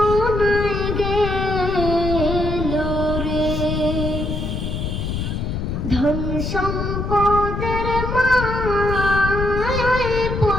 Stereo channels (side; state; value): left; noise; rumble, 3 dB below the sound